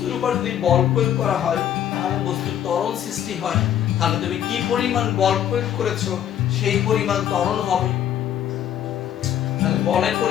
উপর যদি বল প্রয়োগ করা হয় তাহলে বস্তুর ত্বরণ সৃষ্টি হয়। তাহলে তুমি কি পরিমাণ বল প্রয়োগ করেছো সেই পরিমাণ ত্বরণ হবে। তাহলে বলের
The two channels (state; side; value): quieter; right; 10.4 dB